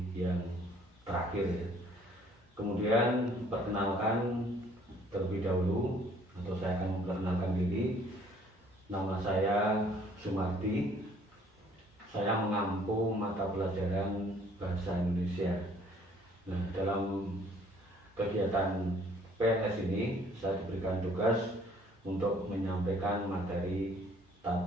yang terakhir ya. Kemudian perkenalkan terlebih dahulu, atau saya akan memperkenalkan diri. Nama saya Sumardi. Saya mengampu mata pelajaran Bahasa Indonesia. Nah, dalam kegiatan PLS ini saya diberikan tugas untuk menyampaikan materi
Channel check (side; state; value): both; normal; correlation 0.59